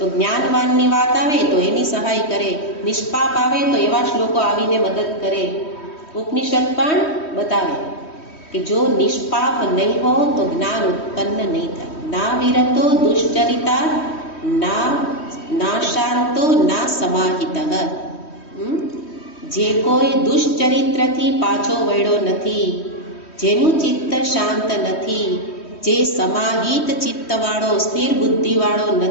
જ્ઞાનવાનની વાત આવે તો એની સહાય કરે, નિષ્પાપ આવે તો એવા શ્લોકો આવીને મદદ કરે. ઉપનિષદ પણ બતાવે કે જો નિષ્પાપ નહીં હો તો જ્ઞાન ઉત્પન્ન નહીં થાય. ના વિરતો દુશ્ચરિતા, ના શાંતો ના સમાહિતઃ. જે કોઈ દુશ્ચરિત્રથી પાછો વળ્યો નથી, જેનું ચિત્ત શાંત નથી, જે સમાહિત ચિત્તવાળો, સ્થિર બુદ્ધિવાળો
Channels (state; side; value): late; right; 3.1 ms